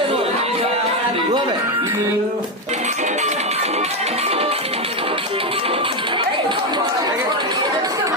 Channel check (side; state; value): both; normal; correlation 0.09